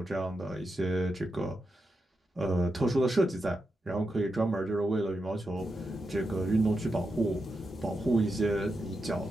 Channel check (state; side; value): normal; both; correlation 0.87